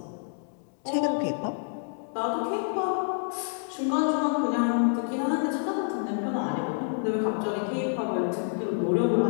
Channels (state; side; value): silent; right; digital silence